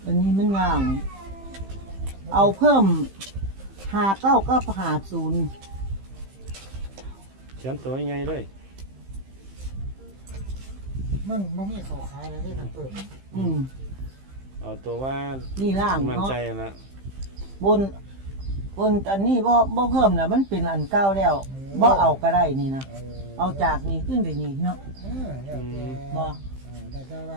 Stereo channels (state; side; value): late; left; 15 ms